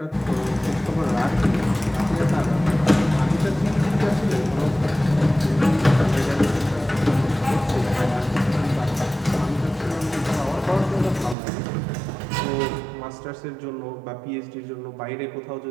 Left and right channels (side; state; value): left; drops out; at 11.4 s